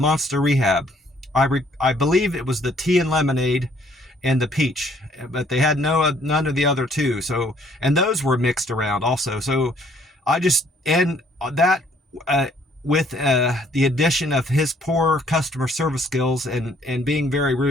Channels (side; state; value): both; normal; correlation 0.63